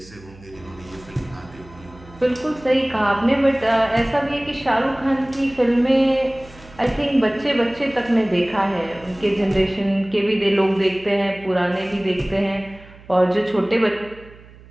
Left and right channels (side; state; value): right; noise; hum, 22 dB below the sound